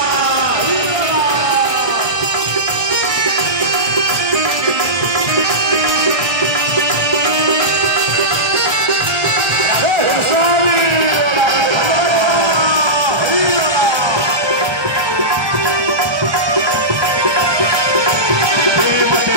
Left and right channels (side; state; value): left; late; 1.3 ms